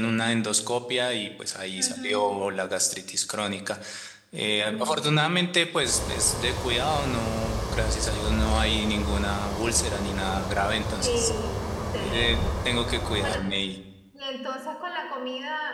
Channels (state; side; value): identical; both; correlation 1.00